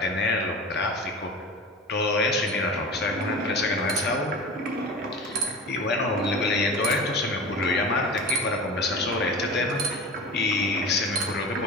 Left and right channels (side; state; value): both; normal; correlation 0.32